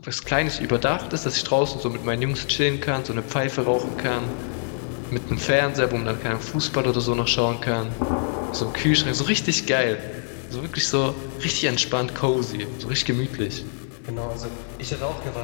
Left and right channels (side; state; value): right; silent; digital silence